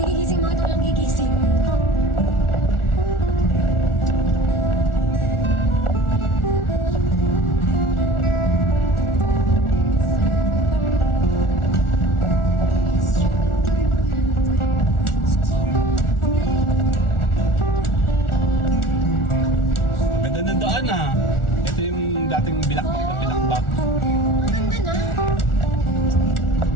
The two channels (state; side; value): late; right; 1.4 ms